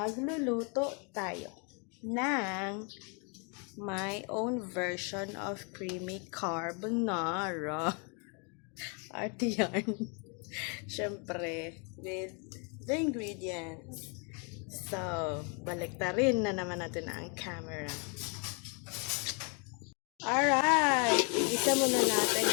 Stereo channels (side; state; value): right; quieter; 35.6 dB